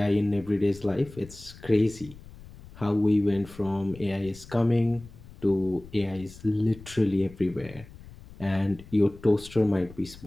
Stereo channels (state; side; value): noise; left; rumble, 19 dB below the sound